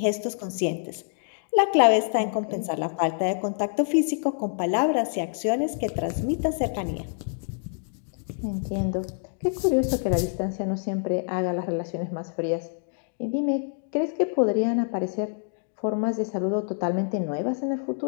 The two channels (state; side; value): silent; right; digital silence